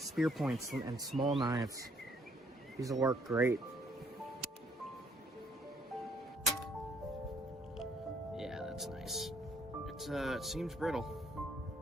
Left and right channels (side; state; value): both; normal; correlation 0.65